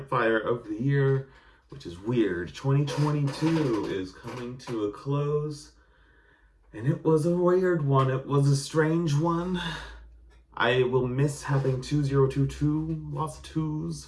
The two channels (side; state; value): both; identical; correlation 1.00